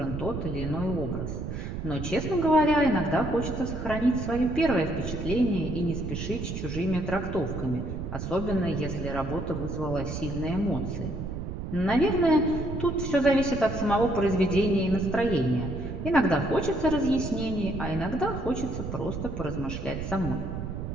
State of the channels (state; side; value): noise; right; rumble, 5 dB below the sound